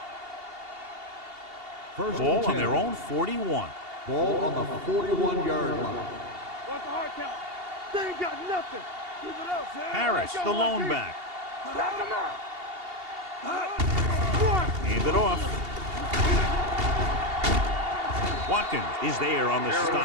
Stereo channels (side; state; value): left; late; 2.8 ms